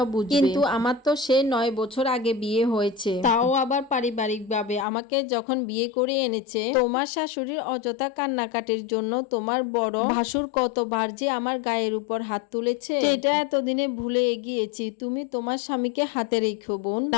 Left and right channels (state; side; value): drops out; right; at 4.9 s